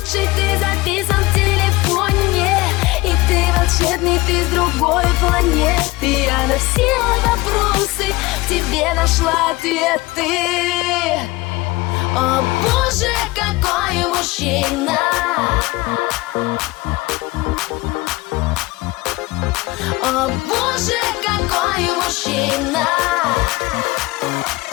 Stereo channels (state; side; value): quieter; right; 20.9 dB